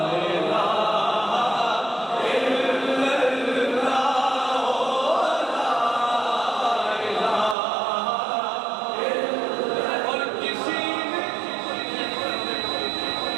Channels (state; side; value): drops out; left; at 7.6 s